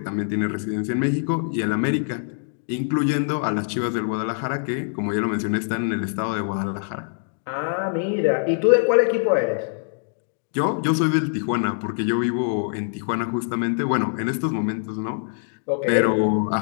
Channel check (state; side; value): silent; right; 63 dB below the other